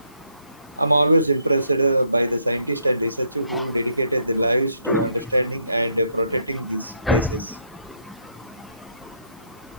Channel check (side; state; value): both; inverted; correlation -0.72